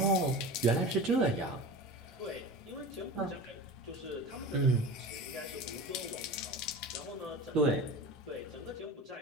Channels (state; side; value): normal; both; correlation 0.33